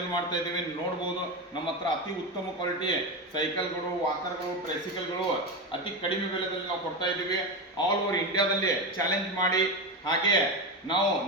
ಮಾಡ್ತಾ ಇದ್ದೀವಿ. ನೋಡ್ಬೋದು ನಮ್ಮ ಹತ್ರ ಅತಿ ಉತ್ತಮ ಕ್ವಾಲಿಟಿ ಸೈಕಲ್ಗಳು, ವಾಕರ್ಗಳು, ಟ್ರೈಸಿಕಲ್ಗಳು ಅತಿ ಕಡಿಮೆ ಬೆಲೆದಲ್ಲಿ ನಾವು ಕೊಡ್ತಾ ಇದ್ದೀವಿ. ಆಲ್ ಓವರ್ ಇಂಡಿಯಾದಲ್ಲಿ ಚಾಲೆಂಜ್ ಮಾಡಿ, ಹಾಗೆ ನಾವು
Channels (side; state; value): both; normal; correlation 0.17